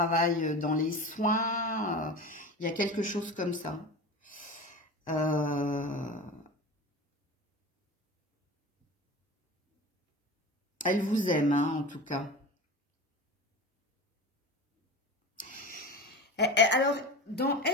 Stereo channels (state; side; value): normal; both; correlation 0.30